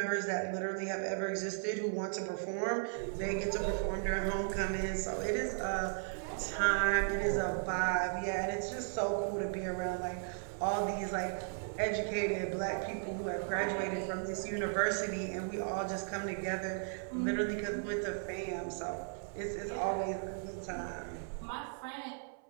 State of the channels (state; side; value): silent; left; 54 dB below the other